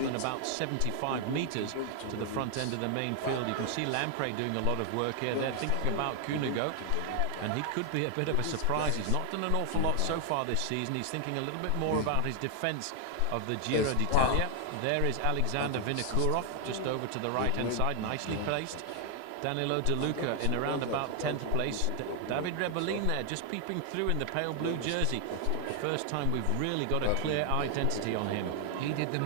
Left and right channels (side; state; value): both; different; correlation 0.00